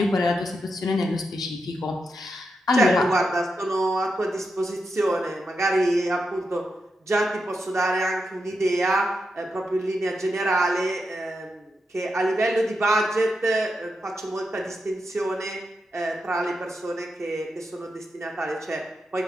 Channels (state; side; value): normal; both; correlation 0.86